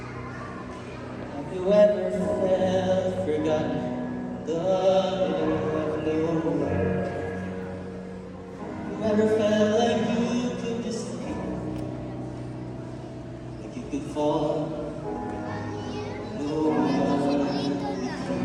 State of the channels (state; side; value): identical; both; correlation 1.00